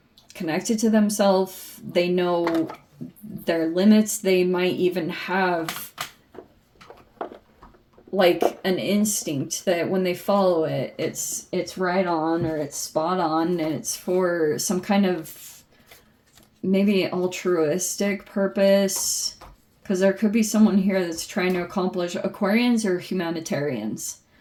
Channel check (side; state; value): both; identical; correlation 1.00